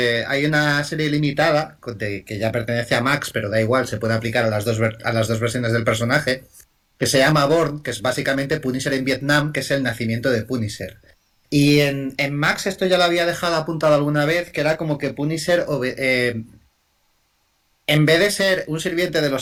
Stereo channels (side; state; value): both; identical; correlation 1.00